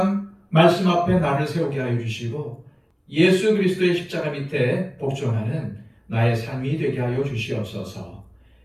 말씀 앞에 나를 세우게 하여 주시고 예수 그리스도의 십자가 밑에 복종하는 나의 삶이 되게 하여 주시옵소서.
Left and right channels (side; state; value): both; identical; correlation 1.00